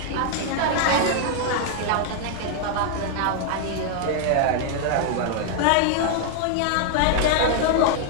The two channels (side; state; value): both; different; correlation 0.00